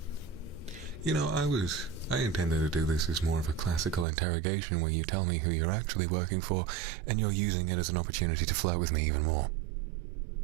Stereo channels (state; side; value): drops out; left; at 4.0 s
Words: You know, I intended to do this as more of a classical interrogation where you tell me who you're actually working for and you're using it as an opportunity to flirt with me even more.